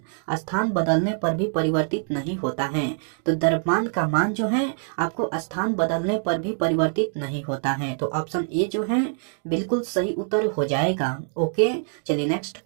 स्थान बदलने पर भी परिवर्तित नहीं होता है। तो द्रव्यमान का मान जो है आपको स्थान बदलने पर भी परिवर्तित नहीं होता है, तो ऑप्शन ए जो है बिल्कुल सही उत्तर हो जाएगा। ओके, चलिए नेक्स्ट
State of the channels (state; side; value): silent; left; 62 dB below the other